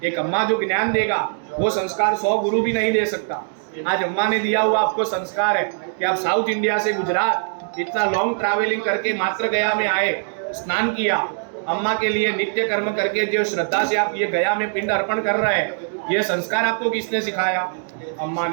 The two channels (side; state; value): left; silent; digital silence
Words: एक अम्मा जो ज्ञान देगा वो संस्कार 100 गुरु भी नहीं दे सकता। आज अम्मा ने दिया हुआ आपको संस्कार है कि आप साउथ इंडिया से गुजरात इतना लॉन्ग ट्रैवलिंग करके मात्र गया में आए, स्नान किया, अम्मा के लिए नित्य कर्म करके जो श्रद्धा से आप ये गया में पिंड अर्पण कर रहे हैं, ये संस्कार आपको किसने सिखाया? अम्मा